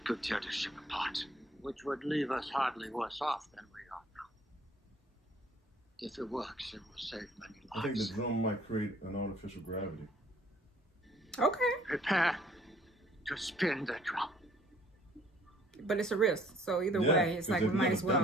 could tear the ship apart. Which would leave us hardly worse off than we are now. If it works, it will save many lives. I think the drum might create an artificial gravity. Okay. Prepare to spin the drum. But it's a risk. So either Yeah, way, it's like we they've might never as well.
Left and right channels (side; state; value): both; normal; correlation 0.58